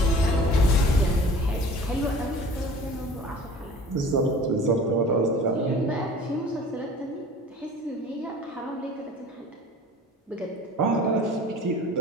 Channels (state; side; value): normal; both; correlation 0.44